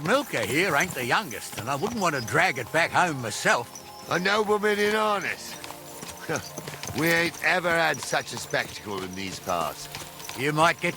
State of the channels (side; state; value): both; identical; correlation 1.00